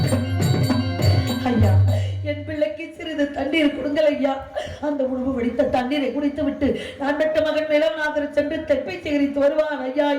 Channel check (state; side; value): identical; both; correlation 1.00